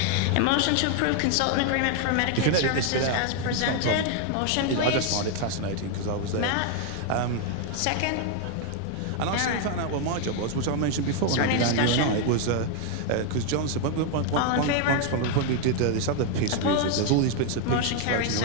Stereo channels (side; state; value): both; different; correlation 0.00